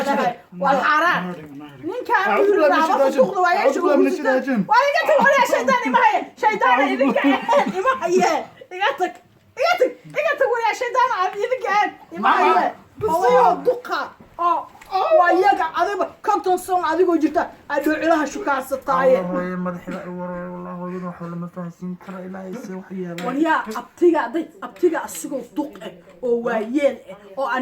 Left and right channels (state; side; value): identical; both; correlation 1.00